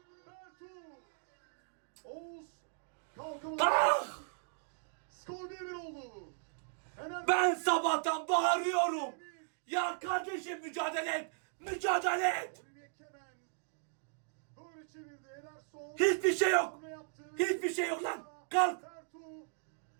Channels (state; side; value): silent; left; digital silence